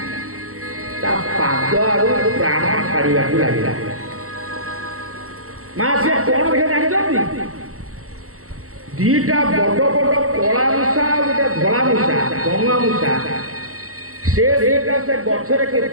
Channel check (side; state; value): left; late; 0.64 ms